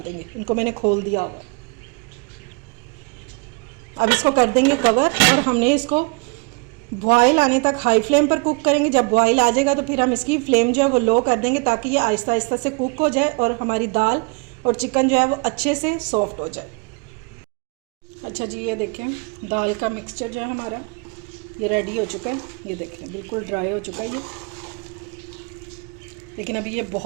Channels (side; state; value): left; quieter; 30.7 dB